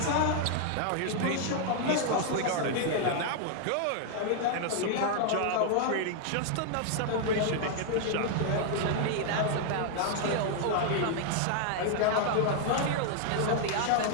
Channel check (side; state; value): both; different; correlation 0.00